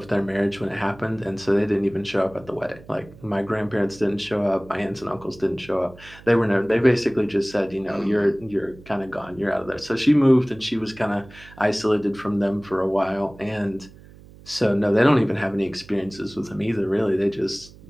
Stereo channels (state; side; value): noise; right; hum, 21 dB below the sound